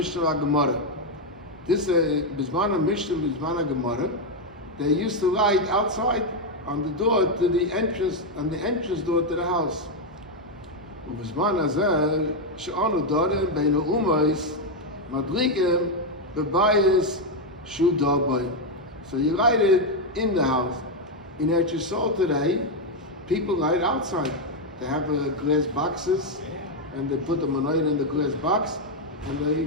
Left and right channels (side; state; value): both; normal; correlation 0.03